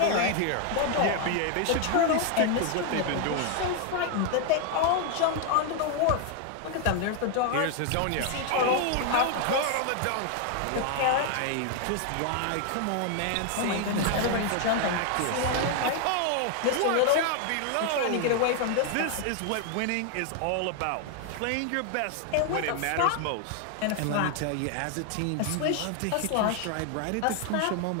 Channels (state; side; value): different; both; correlation 0.00